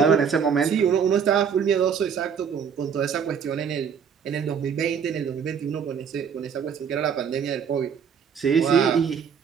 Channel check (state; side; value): quieter; left; 7.1 dB